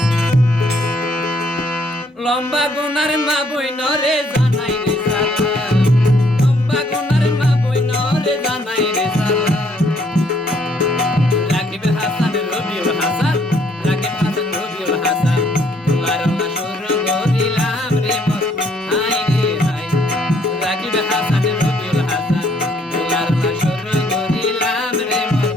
লম্বা গুনার মা বইন রে জানাই রে সালাম, লম্বা গুনার মা বইন রে জানাই রে সালাম। রাকিব হাসান রবিউল হাসান, রাকিব হাসান রবিউল হাসান গোলার অলা শুরু করিলাম রে মোর হাই রে হাই। রাকিব হাসান রবিউল হাসান গোলার অলা শুরু করিলাম রে মোর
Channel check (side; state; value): both; normal; correlation 0.67